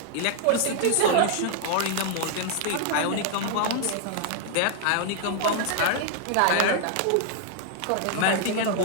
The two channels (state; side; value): different; both; correlation -0.01